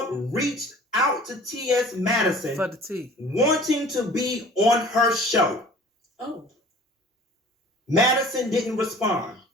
reached out to T.S. Madison for the tea, wanting to be on her show. Oh. Madison didn't respond.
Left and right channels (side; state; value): both; normal; correlation 0.47